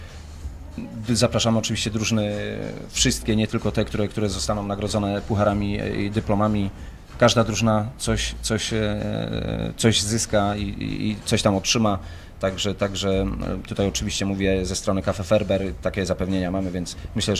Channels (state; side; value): identical; both; correlation 1.00